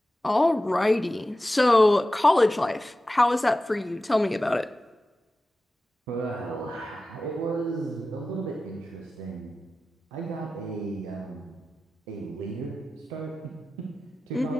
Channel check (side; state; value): both; normal; correlation 0.94